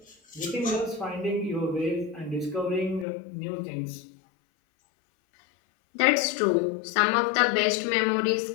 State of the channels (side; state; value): right; drops out; at 3.1 s